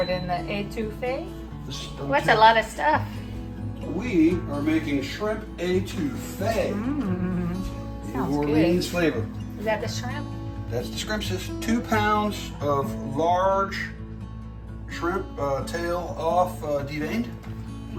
in the étouffée. What's a Sounds lot of stuff? We are making shrimp étouffée. New Sounds Orleans good. flavor. Is that the shrimp? That's the shrimp, sis. 2 pounds of large shrimp tail off deveined.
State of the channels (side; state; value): both; identical; correlation 1.00